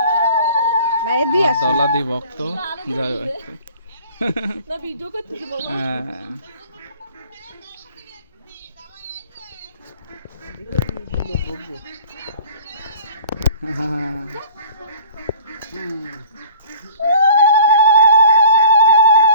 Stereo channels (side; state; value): both; inverted; correlation -0.47